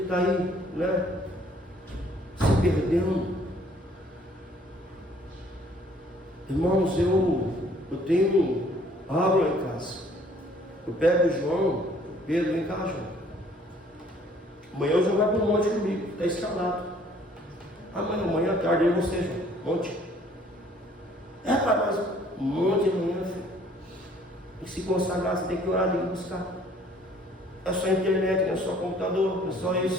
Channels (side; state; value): both; normal; correlation 0.59